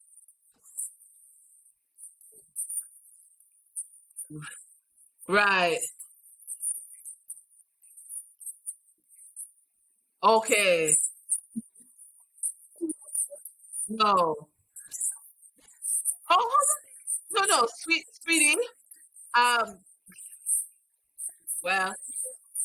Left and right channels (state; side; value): identical; both; correlation 1.00